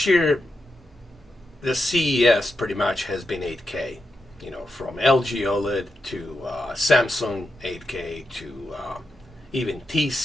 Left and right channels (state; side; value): normal; both; correlation 0.86